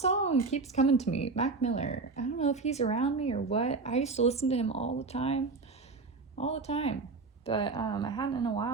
keeps coming to me. Mac Miller. I don't know if he's around me or what. I used to listen to him all the time. All the time. But I hadn't in a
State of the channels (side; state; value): left; quieter; 4.1 dB